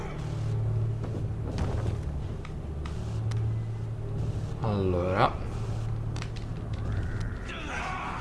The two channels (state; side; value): identical; both; correlation 1.00